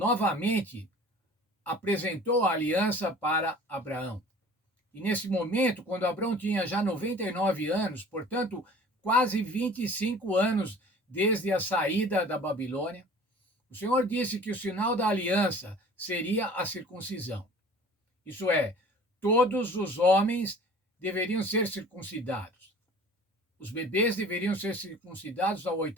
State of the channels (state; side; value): normal; both; correlation 0.46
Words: apresentou a aliança para Abraão. E nesse momento, quando Abraão tinha já 99 anos, portanto, quase 25 anos desde a saída da Babilônia, o Senhor disse que o sinal da aliança seria a circuncisão. Isso é, todos os homens deveriam ser circuncidados. Os bebês deveriam ser circuncidados ao